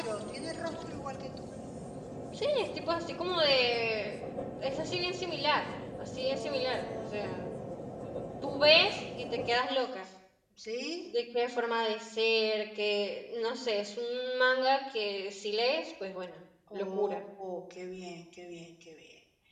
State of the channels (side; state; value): both; identical; correlation 1.00